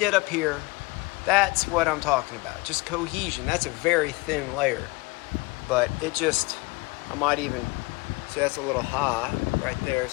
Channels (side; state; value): right; quieter; 24.3 dB